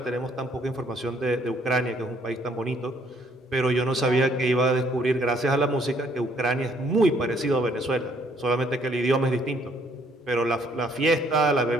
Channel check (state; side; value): normal; both; correlation 0.65